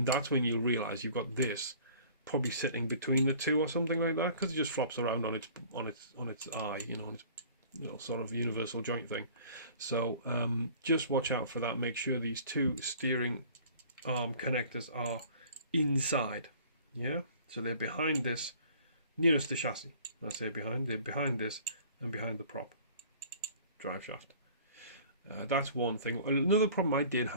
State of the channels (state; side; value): inverted; both; correlation -0.50